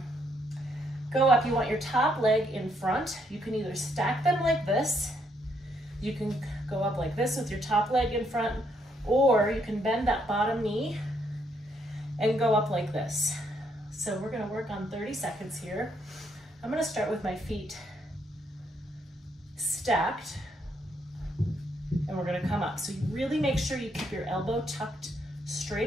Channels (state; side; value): normal; both; correlation 0.73